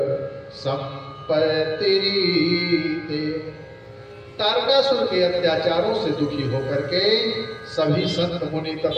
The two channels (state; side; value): identical; both; correlation 1.00